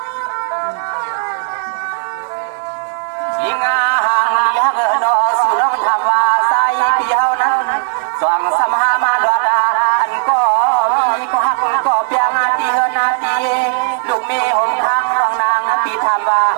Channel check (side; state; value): left; silent; 61 dB below the other